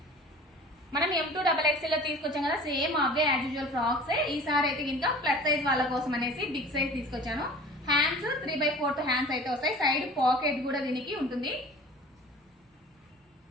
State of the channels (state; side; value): normal; both; correlation 0.42